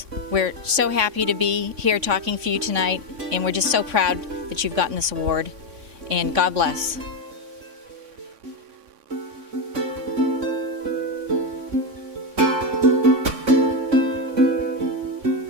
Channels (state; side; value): late; left; 3.6 ms